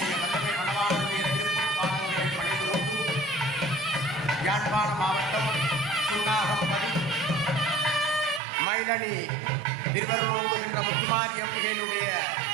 வல்லமை மணவாளனுடைய திருப்பாதங்களை பணிந்து யாழ்ப்பாண மாவட்டம் சுண்ணாகம்பதி மயிலணி திருவள்ளூர் என்ற முத்துமாரி அம்பிகையினுடைய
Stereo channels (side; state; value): left; drops out; at 8.4 s